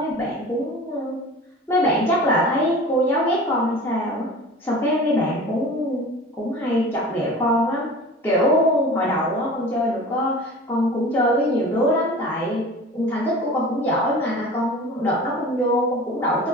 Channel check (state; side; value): normal; both; correlation 0.38